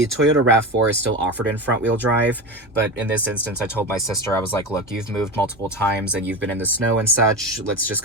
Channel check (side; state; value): both; normal; correlation 0.23